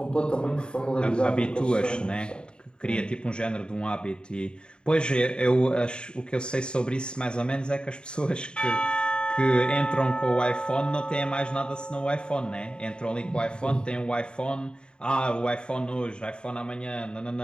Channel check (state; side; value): late; right; 0.050 ms